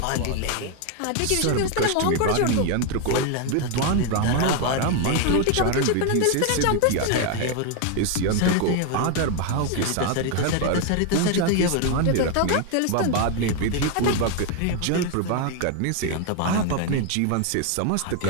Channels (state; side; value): different; both; correlation 0.01